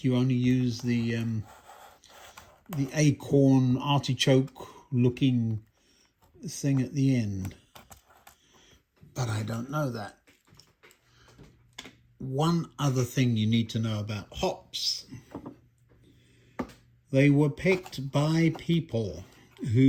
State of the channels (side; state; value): both; identical; correlation 1.00